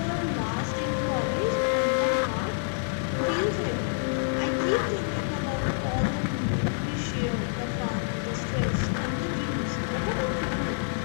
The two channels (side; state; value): right; silent; digital silence